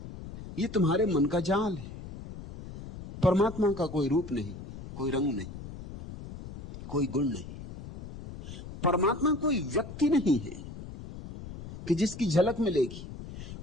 ये तुम्हारे मन का जाल है। परमात्मा का कोई रूप नहीं, कोई रंग नहीं, कोई गुण नहीं। परमात्मा कोई व्यक्ति नहीं है कि जिसकी झलक मिलेगी।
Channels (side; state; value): left; noise; rumble, 12 dB below the sound